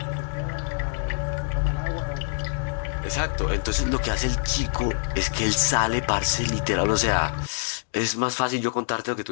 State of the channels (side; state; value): right; silent; digital silence